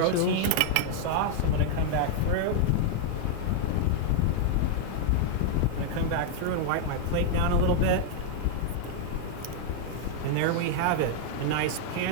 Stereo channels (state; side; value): different; both; correlation 0.00